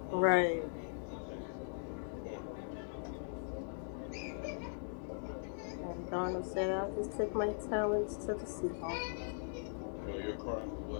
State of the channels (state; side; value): silent; right; digital silence